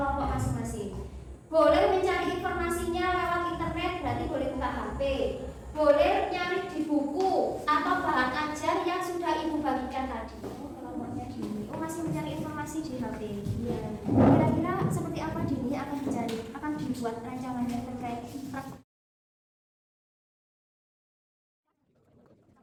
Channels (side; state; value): both; identical; correlation 1.00